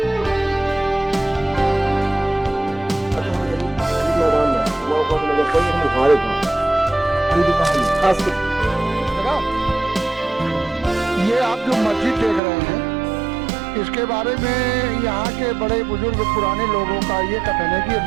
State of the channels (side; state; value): left; drops out; at 12.4 s